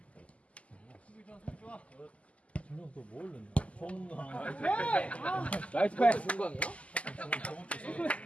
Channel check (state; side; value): late; right; 0.064 ms